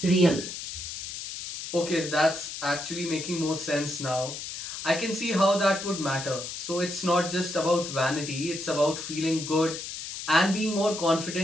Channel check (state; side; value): noise; left; hiss, 8 dB below the sound